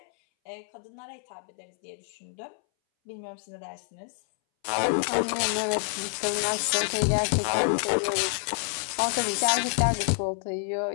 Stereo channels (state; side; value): silent; right; 59 dB below the other